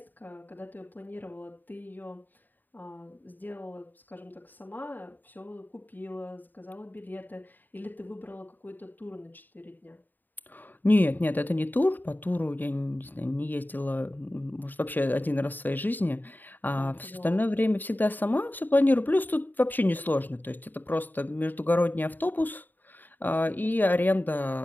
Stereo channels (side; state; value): right; late; 0.089 ms